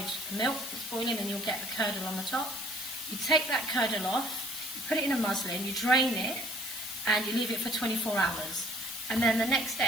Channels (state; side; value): noise; left; hiss, 8 dB below the sound